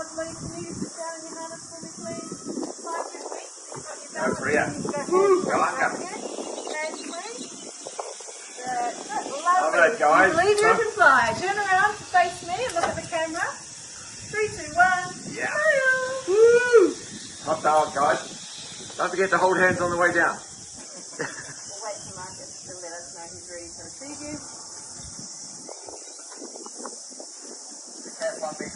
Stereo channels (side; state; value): both; identical; correlation 1.00